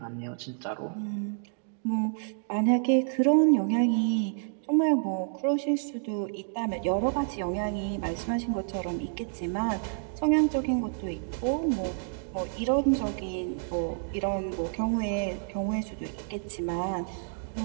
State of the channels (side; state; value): left; silent; digital silence